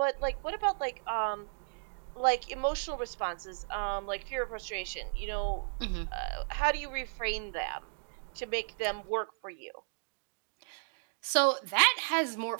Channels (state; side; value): silent; left; digital silence